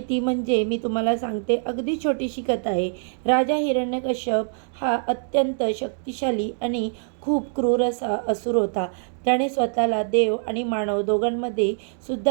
ती म्हणजे मी तुम्हाला सांगते. अगदी छोटीशी कथा आहे. राजा हिरण्यकश्यप हा अत्यंत शक्तिशाली आणि खूप क्रूर असा असुर होता. त्याने स्वतःला देव आणि मानव दोघांमध्ये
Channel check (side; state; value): left; silent; digital silence